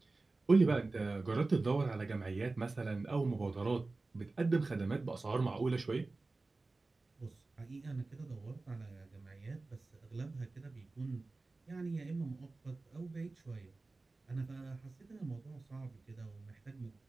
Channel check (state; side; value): quieter; left; 3.4 dB